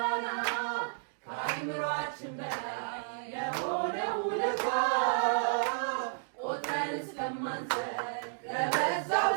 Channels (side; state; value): left; silent; digital silence